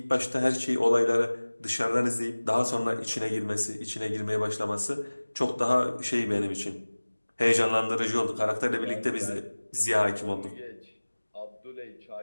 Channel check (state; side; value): inverted; both; correlation -1.00